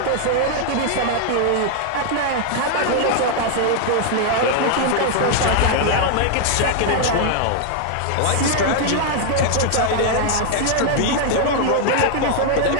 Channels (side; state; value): both; different; correlation 0.00